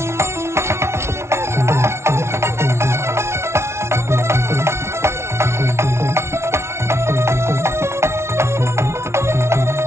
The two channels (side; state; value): left; late; 0.13 ms